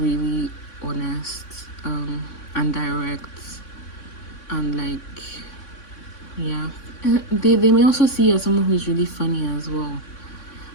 honest, and direct, and like, yeah. They may also see you as someone who's really funny as well,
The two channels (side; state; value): right; late; 3.6 ms